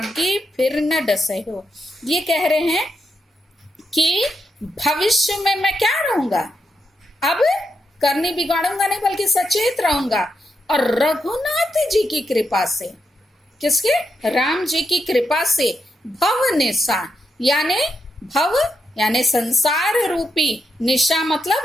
फिर न डसे हो। ये कह रहे हैं कि भविष्य में मैं क्या रहूंगा? अब करनी बिगाड़ूंगा नहीं, बल्कि सचेत रहूंगा। और रघुनाथ जी की कृपा से, किसके? राम जी की कृपा से भव निशा, यानी भव यानी संसार रूपी, निशा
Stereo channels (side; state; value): both; normal; correlation 0.83